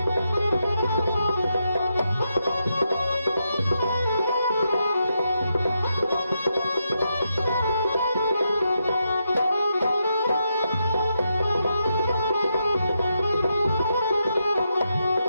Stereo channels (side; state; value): both; inverted; correlation -0.83